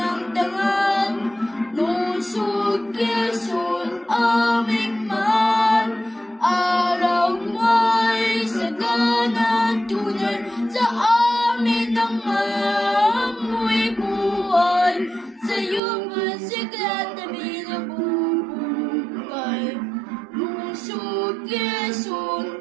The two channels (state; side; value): drops out; left; at 15.8 s